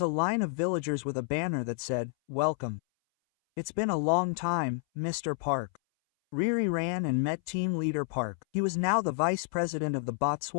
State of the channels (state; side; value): silent; right; 58 dB below the other